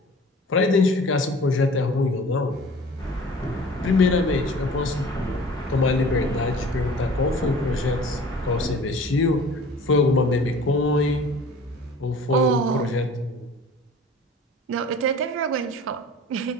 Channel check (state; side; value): normal; both; correlation 0.45